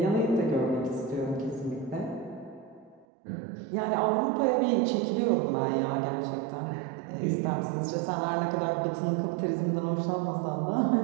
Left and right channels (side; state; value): left; drops out; at 3.1 s